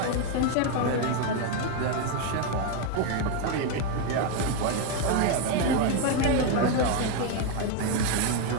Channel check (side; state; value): both; different; correlation 0.01